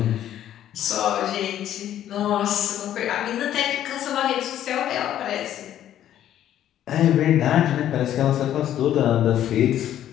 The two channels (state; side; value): quieter; right; 11.5 dB